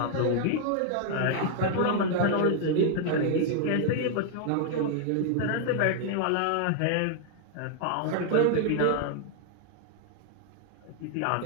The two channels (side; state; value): both; different; correlation 0.00